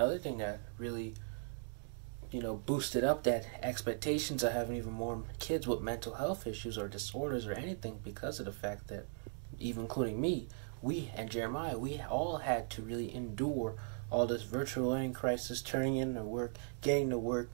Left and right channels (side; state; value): left; silent; digital silence